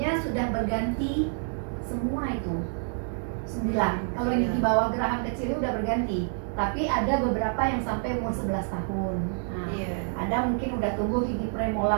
sudah berganti semua itu 9. Kalau yang gigi bawah geraham kecil udah berganti. Tapi ada beberapa yang sampai umur 11 tahun. Nah, ada mungkin udah tumbuh gigi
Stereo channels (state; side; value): silent; left; 60 dB below the other